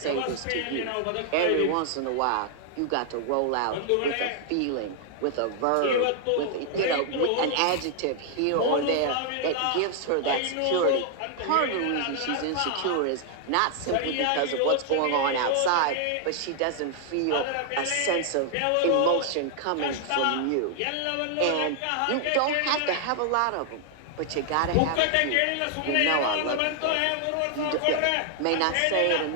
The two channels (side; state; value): both; different; correlation 0.00